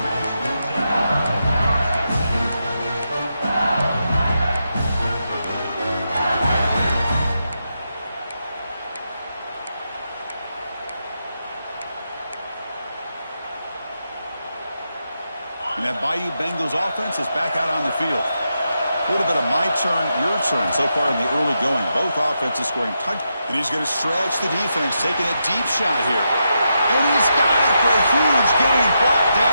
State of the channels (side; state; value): both; inverted; correlation -0.85